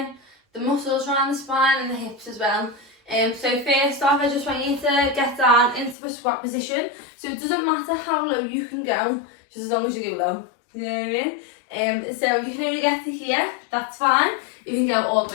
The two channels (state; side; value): drops out; right; at 6.0 s